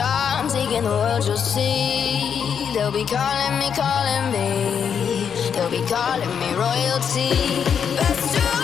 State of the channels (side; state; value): right; quieter; 7.4 dB